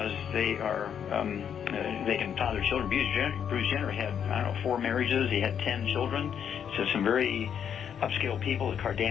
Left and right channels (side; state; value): right; quieter; 8.3 dB